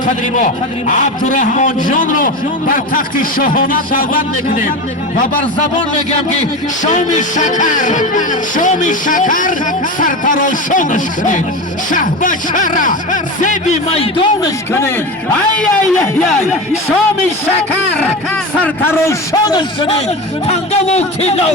ما عبدالرحمن جان رو بر تخت شاهانه دعوت میکنیم و بر زبان میگم که شام شکر سرتراشانش کنید شاهبچه را زیبی میدانش کنید شام شکر سرتراشانش کنید تنگه و تیلا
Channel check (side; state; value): both; normal; correlation 0.24